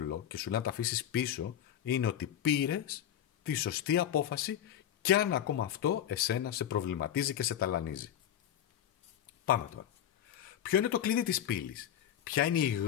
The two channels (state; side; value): quieter; right; 10.4 dB